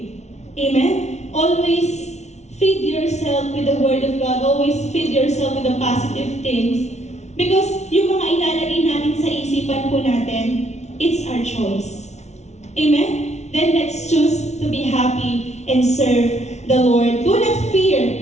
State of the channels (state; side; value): late; right; 0.32 ms